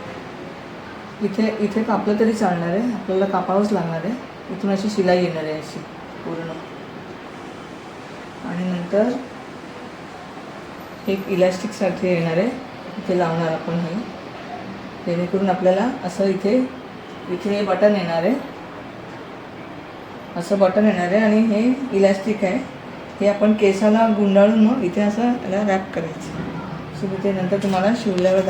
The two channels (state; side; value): identical; both; correlation 1.00